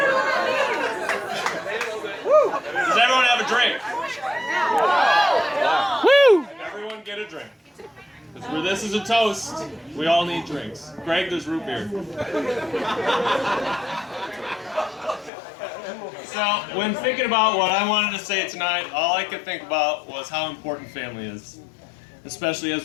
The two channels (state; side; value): drops out; right; at 15.3 s